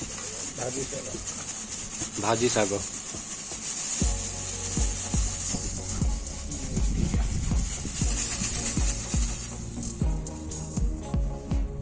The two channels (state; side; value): identical; both; correlation 1.00